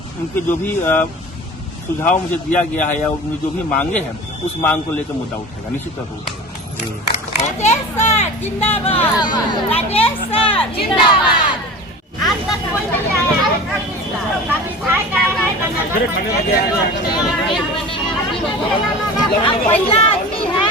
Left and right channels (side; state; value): both; normal; correlation 0.36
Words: जो भी सुझाव मुझे दिया गया है या उनकी जो भी मांगे हैं उस मांग को लेकर मुद्दा उठेगा, निश्चित तौर पर उठेगा। राजेश सर जिंदाबाद, राजेश सर जिंदाबाद। आज तक कोई नहीं आया पहला आदमी